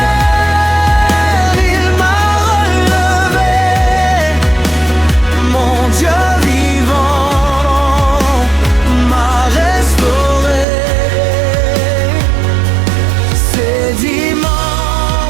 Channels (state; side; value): drops out; left; at 10.7 s